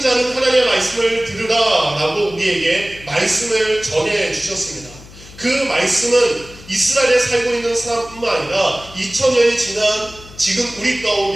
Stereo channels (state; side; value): noise; left; hum, 19 dB below the sound